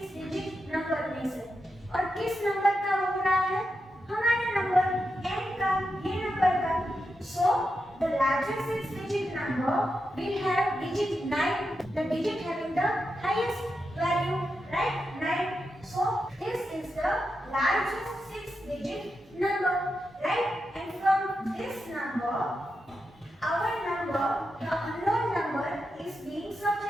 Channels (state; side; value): normal; both; correlation 0.87